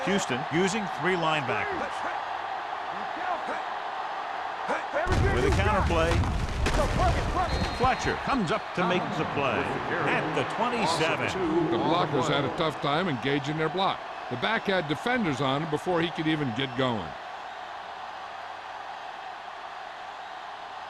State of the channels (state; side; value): identical; both; correlation 1.00